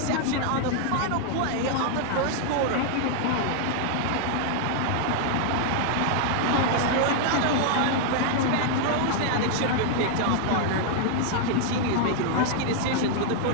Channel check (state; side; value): different; both; correlation -0.01